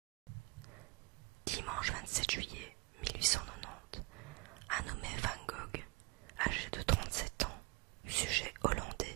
Dimanche 27 juillet 1890, un nommé Van Gogh, âgé de 37 ans, sujet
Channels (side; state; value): left; quieter; 25.8 dB